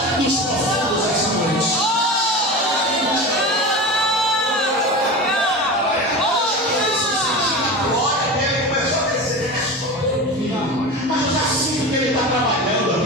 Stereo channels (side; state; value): both; normal; correlation 0.28